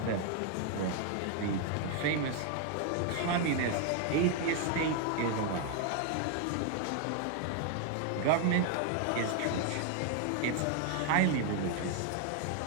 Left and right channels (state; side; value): different; both; correlation 0.00